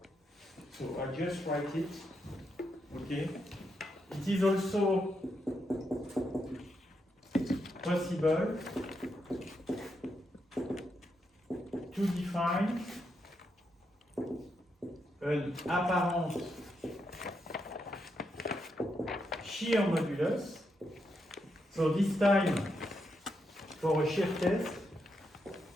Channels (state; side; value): normal; both; correlation 0.82